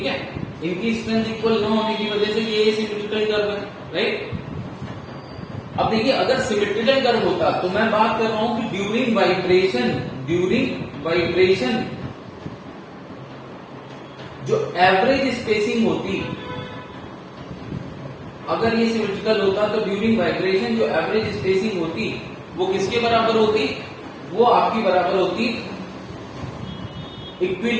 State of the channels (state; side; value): identical; both; correlation 1.00